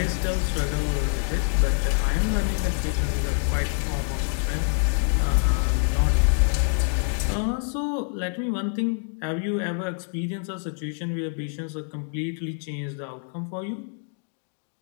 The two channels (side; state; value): right; silent; 61 dB below the other